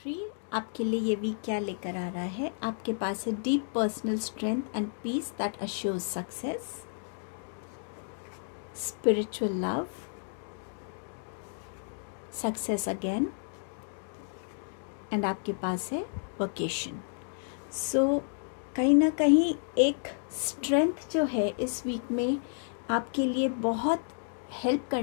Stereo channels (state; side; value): silent; right; digital silence